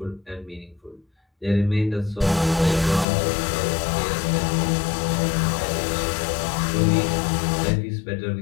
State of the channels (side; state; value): right; drops out; at 3.1 s